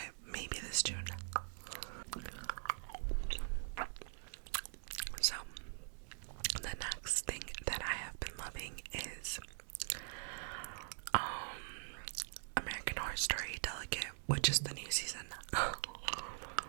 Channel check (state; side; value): silent; left; digital silence